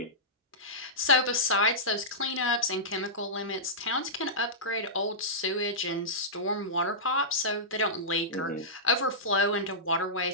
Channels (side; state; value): both; normal; correlation -0.15